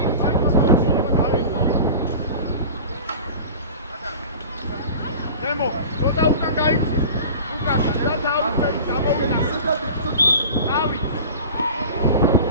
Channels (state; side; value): inverted; both; correlation -0.37